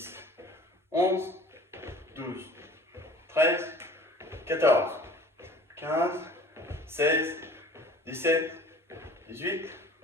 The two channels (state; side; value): normal; both; correlation 0.46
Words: 11, 12, 13, 14, 15, 16, 17, 18,